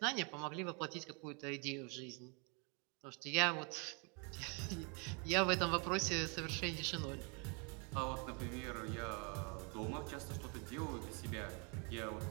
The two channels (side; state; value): left; quieter; 33.7 dB